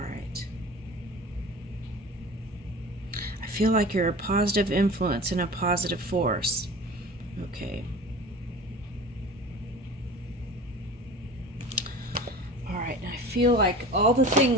I feel like you're a positive influence and a positive force. Okay. All right. And I feel like all the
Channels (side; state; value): both; normal; correlation 0.38